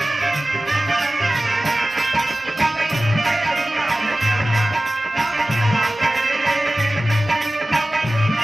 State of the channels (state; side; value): normal; both; correlation 0.96